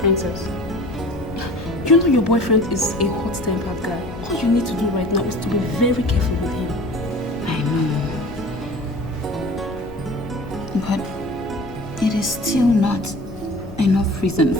you know your boyfriend is a hot-tempered guy. All you need to do right now is to be very careful with him. I know. But it is still not enough reason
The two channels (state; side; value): normal; both; correlation 0.42